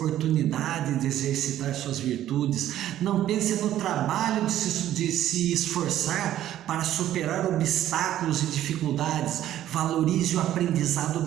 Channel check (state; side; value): quieter; left; 12.5 dB